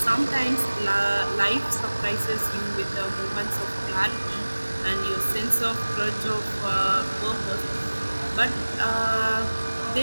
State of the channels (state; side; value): inverted; both; correlation -1.00